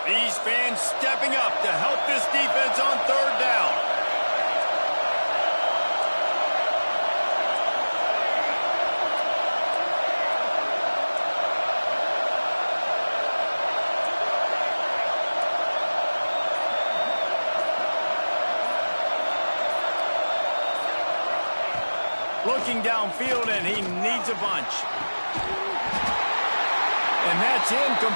These fans stepping up to help this defense on third down. Looking downfield, and he needs a bunch. And that's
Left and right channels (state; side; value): inverted; both; correlation -1.00